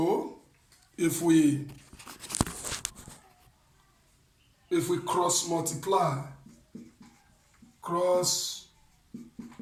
if we cross multiply,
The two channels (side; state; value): both; identical; correlation 1.00